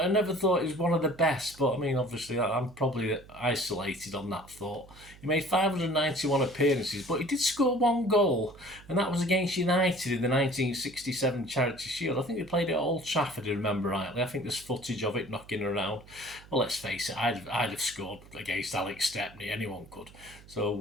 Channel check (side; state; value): right; noise; hum, 22 dB below the sound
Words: I never thought he was one of the best. But I mean, obviously, I'm probably isolated on that thought. He made 591 appearances, but he did score 1 goal, and that was against United in the 1967 Charity Shield. I think they played it at Old Trafford, if I remember rightly. I think there's footage of it knocking around. Well, let's face it, I'd have scored against Alex Stepney. Anyone could.